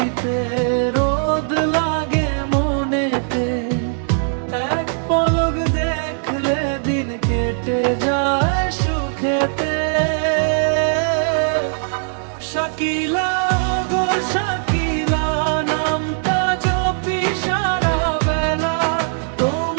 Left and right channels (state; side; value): silent; left; 65 dB below the other